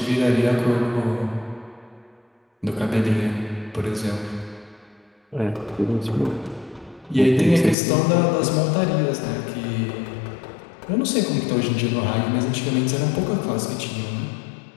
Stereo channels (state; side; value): drops out; right; at 7.8 s